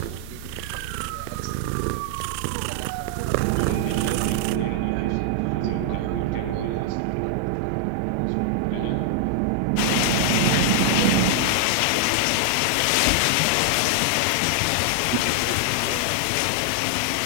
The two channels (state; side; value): different; both; correlation 0.00